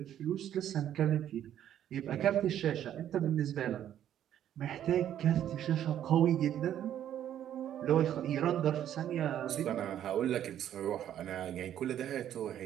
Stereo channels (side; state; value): left; quieter; 10.7 dB